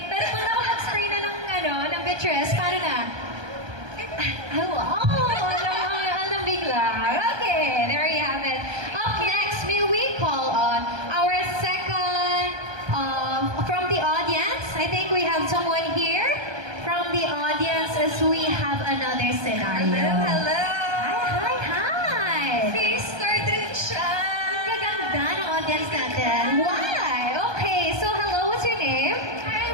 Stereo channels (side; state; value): left; late; 1.2 ms